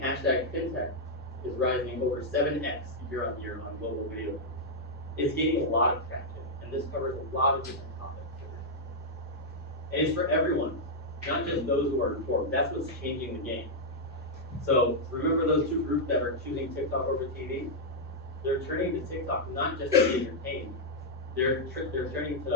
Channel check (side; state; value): both; normal; correlation -0.05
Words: hashtag FinTech is rising over 7x year on year on global video views. It's gaining a lot of traction, and this covers a lot of different topics. And it's for everyone, not just those who are informed. That's what's changing the game. So remember those two groups that are choosing TikTok over TV? They're turning to TikTok not just to be entertained. They're turning